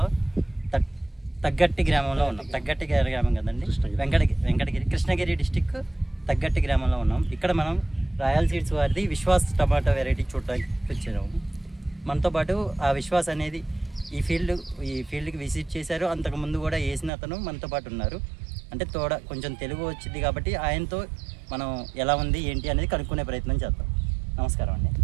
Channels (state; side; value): drops out; left; at 17.1 s